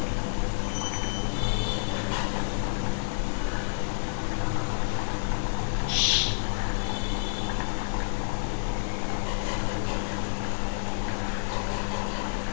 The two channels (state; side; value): silent; right; 55 dB below the other